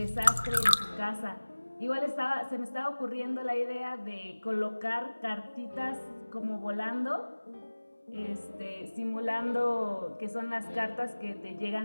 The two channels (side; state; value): both; inverted; correlation -1.00